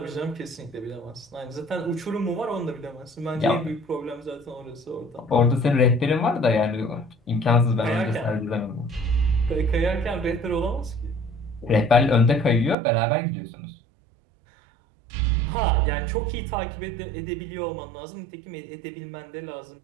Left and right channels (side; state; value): left; drops out; at 12.8 s